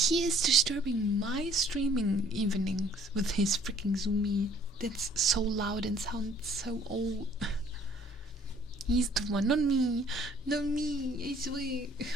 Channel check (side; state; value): both; normal; correlation 0.57